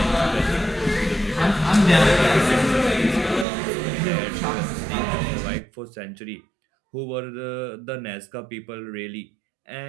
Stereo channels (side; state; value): left; drops out; at 3.5 s